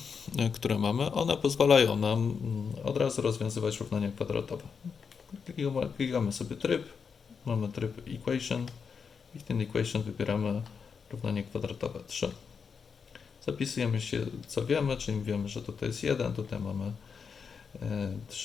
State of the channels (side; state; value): right; quieter; 6.0 dB